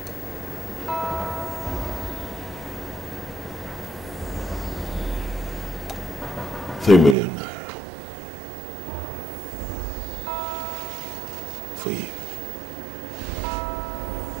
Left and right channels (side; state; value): left; drops out; at 7.2 s